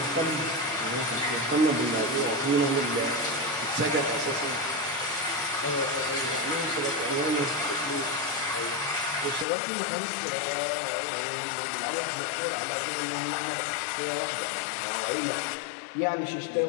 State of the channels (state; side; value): drops out; right; at 9.5 s